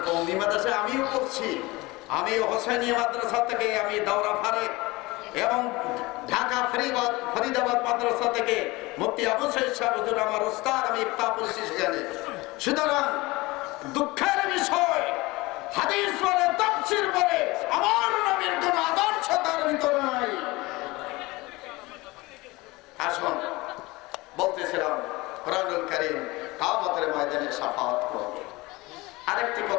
কওমি মাদ্রাসায় আমিও পড়ছি। আমি হোসেনিয়া মাদ্রাসা থেকে আমি দাওরা ফারেক এবং ঢাকা ফরিদাবাদ মাদ্রাসা থেকে মুফতি আবু সাইদ সাহেব হুজুর আমার উস্তাদ, আমি ইফতা পড়ছি সেখানে। সুতরাং দুঃখের বিষয়, হাদিস বলে, তাফসীর বলে, আমার নবীর কোন আদর্শ তার ভিতরে নাই। আসুন, বলতেছিলাম কোরআনুল কারীম কিয়ামতের ময়দানে শাফাআত করবে। আরেকটি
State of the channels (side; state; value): right; quieter; 22.0 dB